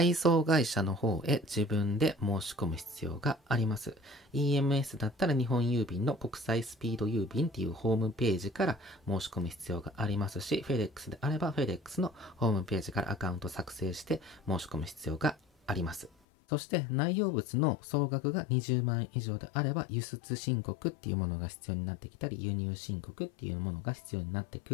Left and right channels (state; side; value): drops out; right; at 16.1 s